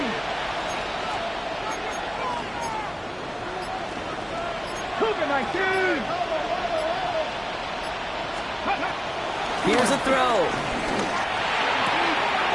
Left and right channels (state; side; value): identical; both; correlation 1.00